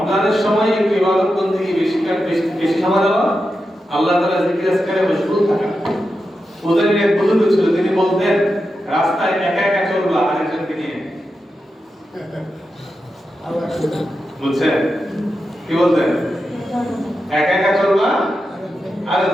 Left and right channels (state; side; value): normal; both; correlation 0.89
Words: সময় একটু ইবাদত বন্দেগী বেশি সময় দেওয়া, আল্লাহ তাআলা জিকির আজকারে মশগুল থাকা। ওদের এক বুজুর্গ ছিল, তিনি বলতেন রাস্তায় একা একা চলবা আরেকজনকে নিয়ে। বুঝছেন কি বলতেন? একা একা চলবা